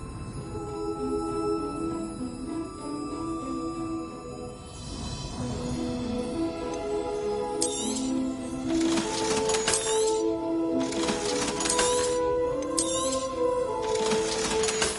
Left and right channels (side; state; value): both; identical; correlation 1.00